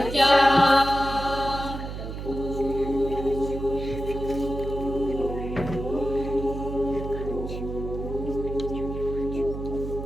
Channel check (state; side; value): noise; right; hum, 7 dB below the sound